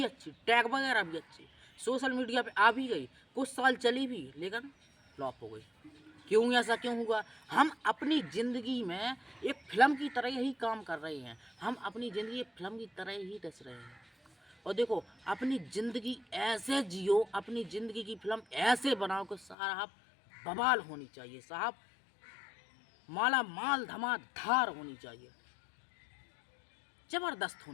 अच्छी, टैग वगैरह भी अच्छी, सोशल मीडिया पे आ भी गई, कुछ साल चली भी, लेकिन फ्लॉप हो गई। क्यों, ऐसा क्यों हुआ? हम अपनी ज़िंदगी में एक फिल्म की तरह ही काम कर रहे हैं, हम अपनी ज़िंदगी एक फिल्म की तरह ही दस रहे हैं। और देखो, अपनी ज़िंदगी ऐसे जियो, अपनी ज़िंदगी की फिल्म ऐसे बनाओ कि साहब बवाल होनी चाहिए, साहब माला माल धमाधार होनी चाहिए, ज़बरदस्त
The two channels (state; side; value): drops out; right; at 19.6 s